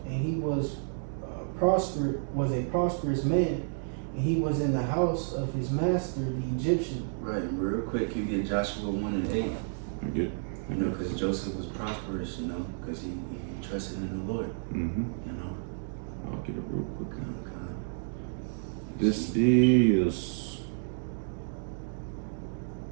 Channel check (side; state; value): left; silent; digital silence